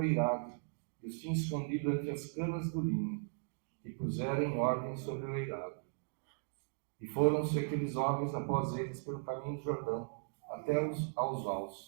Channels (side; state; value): left; silent; digital silence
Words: eirado, e os tinha escondido entre as canas do linho, e puseram em ordem sobre o eirado. E foram-se aqueles homens após eles pelo caminho do Jordão, até aos